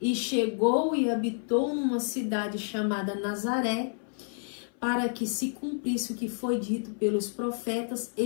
e chegou e habitou numa cidade chamada Nazaré, para que se cumprisse o que foi dito pelos profetas:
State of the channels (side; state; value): right; silent; 58 dB below the other